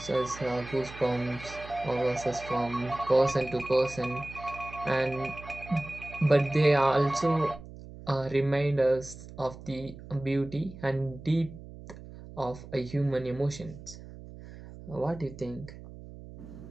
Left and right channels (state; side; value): noise; right; hum, 15 dB below the sound